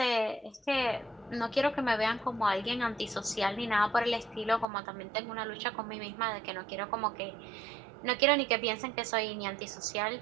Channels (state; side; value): drops out; left; at 4.7 s